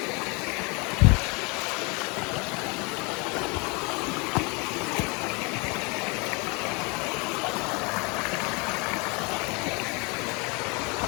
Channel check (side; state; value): right; quieter; 29.6 dB